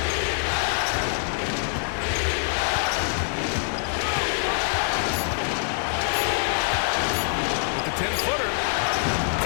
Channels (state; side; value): silent; right; digital silence